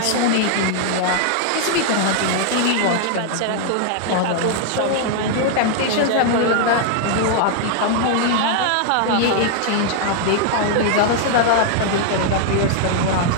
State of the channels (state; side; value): different; both; correlation 0.00